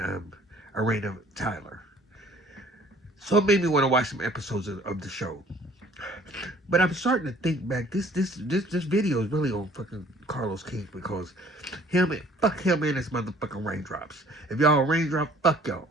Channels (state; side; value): normal; both; correlation 0.55